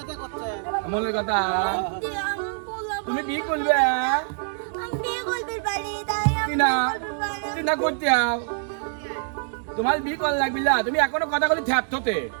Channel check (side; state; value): left; silent; digital silence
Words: মনের কথা তুমি বিয়ে করবে না করতে তোমার বিয়ে কর লাগবি না তুমি এখনো কথা বলি থ্যাপতে